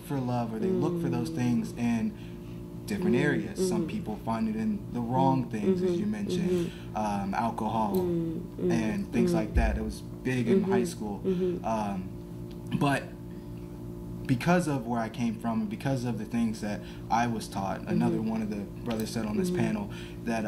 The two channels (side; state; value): both; identical; correlation 1.00